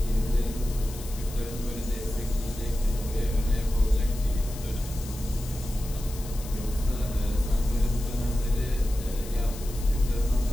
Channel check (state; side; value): noise; left; hiss, 15 dB below the sound